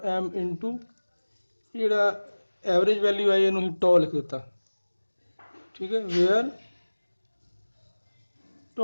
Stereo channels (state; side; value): inverted; both; correlation -1.00